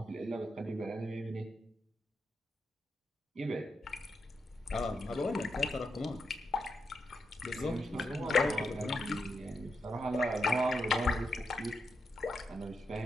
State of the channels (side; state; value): both; normal; correlation 0.84